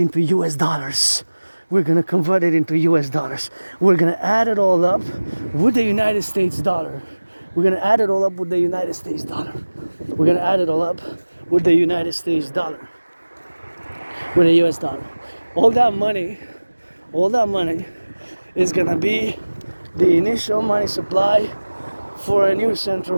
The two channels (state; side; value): inverted; both; correlation -1.00